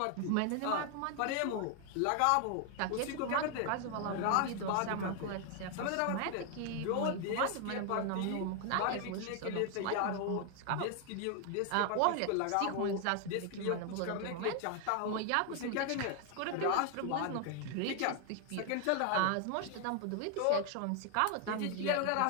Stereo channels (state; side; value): different; both; correlation 0.00